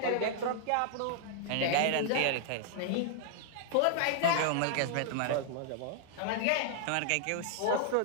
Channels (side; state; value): both; different; correlation -0.01